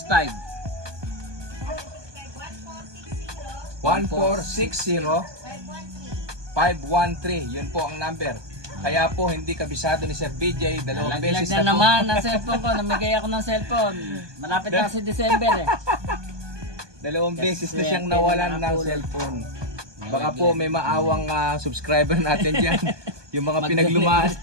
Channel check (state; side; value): late; left; 1.2 ms